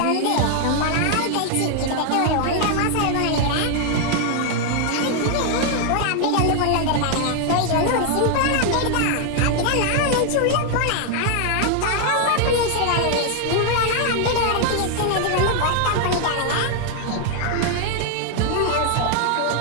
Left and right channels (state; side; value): different; both; correlation 0.00